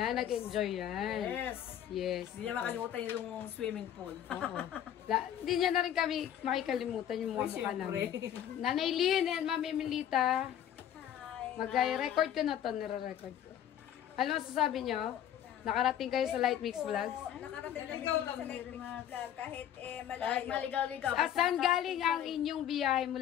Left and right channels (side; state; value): right; quieter; 10.5 dB